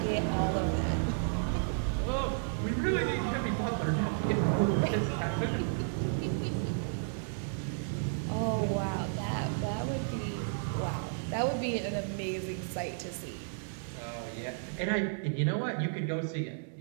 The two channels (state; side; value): silent; left; digital silence